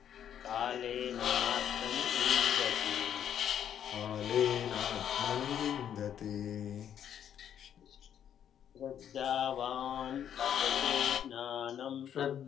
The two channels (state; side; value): quieter; right; 9.5 dB